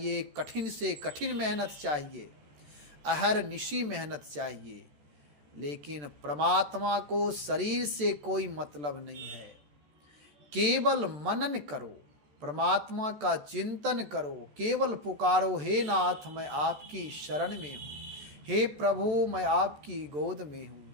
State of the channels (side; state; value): left; late; 14 ms